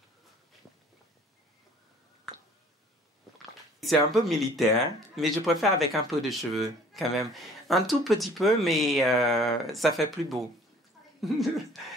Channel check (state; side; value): normal; both; correlation 0.53